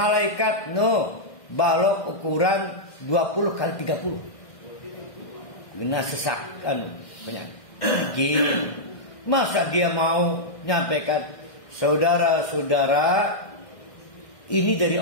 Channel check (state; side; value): late; right; 1.6 ms